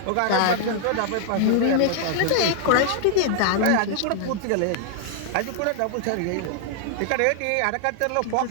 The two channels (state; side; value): different; both; correlation 0.00